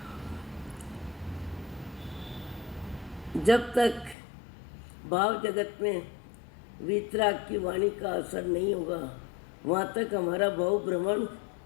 जब तक भाव जगत में वीतराग की वाणी का असर नहीं होगा, वहाँ तक हमारा भाव भ्रमण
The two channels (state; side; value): drops out; right; at 4.2 s